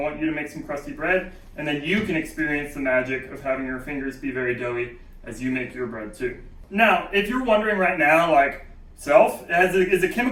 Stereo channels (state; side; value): identical; both; correlation 1.00